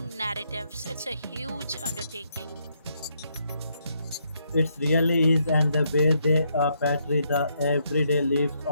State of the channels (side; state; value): both; inverted; correlation -0.76